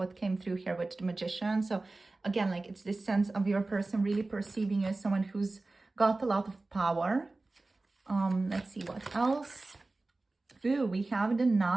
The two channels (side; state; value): left; quieter; 3.2 dB